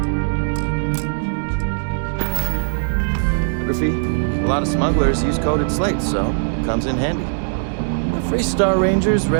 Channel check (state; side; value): silent; left; 64 dB below the other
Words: A lot of smugglers use coded slates, so it comes in handy. The Freestar Ranger's